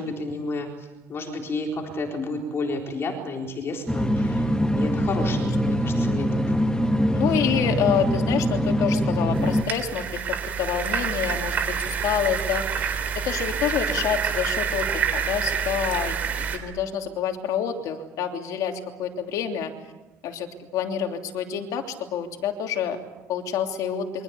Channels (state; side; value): normal; both; correlation 0.59